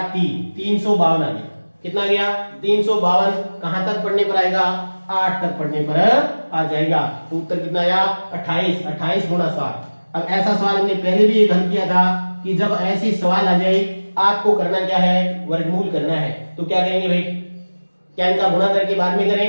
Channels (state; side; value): inverted; both; correlation -1.00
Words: 3, 352 आ गया। कितना गया 352, कहां तक पढ़ने पर आएगा 8 तक पढ़ने पर आ जाएगा। तो उत्तर कितना आया 28, 28 गुणा 7। अब ऐसा सवाल हमने पहले भी हल किया था कि जब ऐसी सवाल आ जाए आपको करना क्या है वर्गमूल करना है। तो क्या करेंगे भाई, क्या इनका गुणा करके बाद में